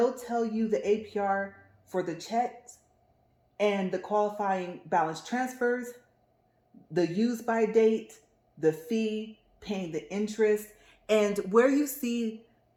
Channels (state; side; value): identical; both; correlation 1.00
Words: tell you the APR for the checks and the qualifying balance transfers, the use by date, the fee, paying the interest, and where you see